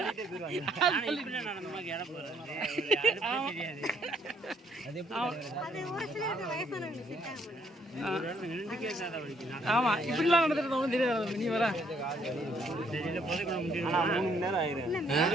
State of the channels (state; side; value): normal; both; correlation 0.67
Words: ஆமா, இப்படிலாம் நடந்துட்டு தெரியாது. நீ வர